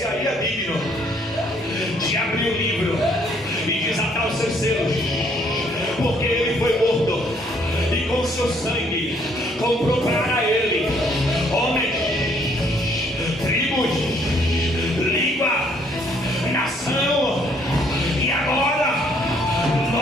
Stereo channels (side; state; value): both; normal; correlation 0.65